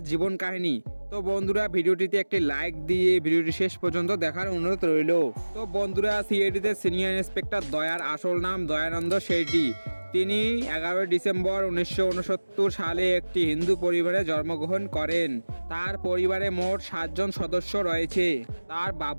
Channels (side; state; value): both; inverted; correlation -1.00